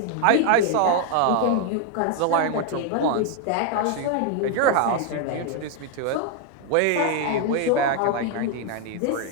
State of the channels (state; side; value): different; both; correlation 0.01